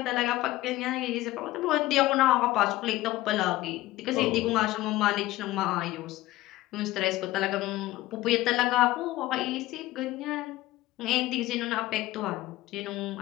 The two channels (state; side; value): quieter; right; 16.9 dB